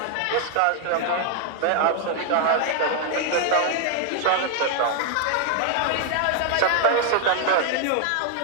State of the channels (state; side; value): different; both; correlation 0.00